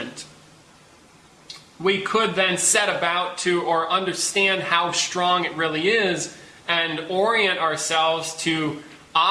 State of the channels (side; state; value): both; identical; correlation 1.00